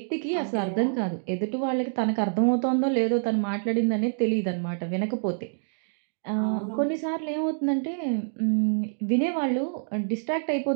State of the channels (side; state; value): left; silent; digital silence